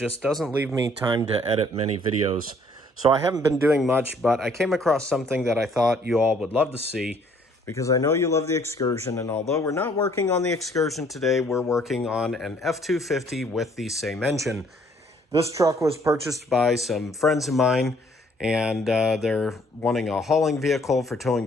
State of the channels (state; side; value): normal; both; correlation 0.62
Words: doesn't leave me time to edit many videos. So I haven't been doing much, but I came across something that I thought you all would love to see, because I know you love the Excursion, and although we're not working on the Excursion today, we're working on an F-250 with the same engine. This truck was purchased by some friends of mine, and they're wanting a hauling vehicle for towing